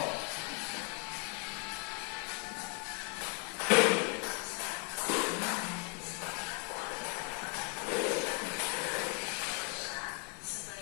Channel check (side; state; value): right; quieter; 33.3 dB